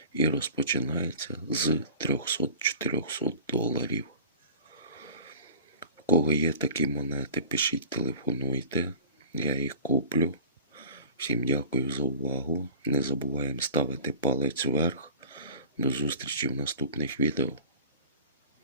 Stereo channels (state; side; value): inverted; both; correlation -0.40